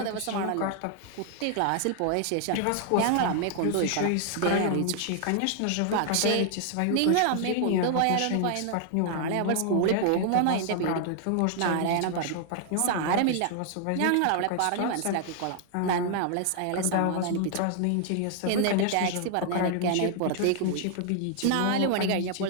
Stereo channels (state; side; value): different; both; correlation 0.00